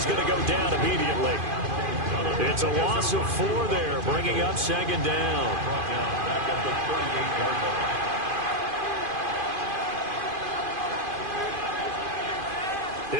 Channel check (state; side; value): late; left; 2.5 ms